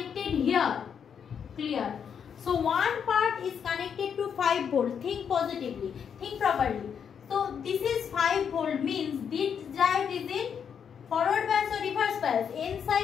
here, clear? So one part is connected to 5 volt. Think positively, think properly. So this is 5 volt means this drive is in forward bias or reverse bias. N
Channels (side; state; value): right; quieter; 7.5 dB